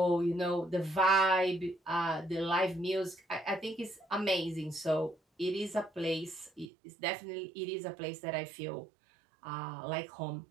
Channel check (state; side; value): drops out; left; at 6.7 s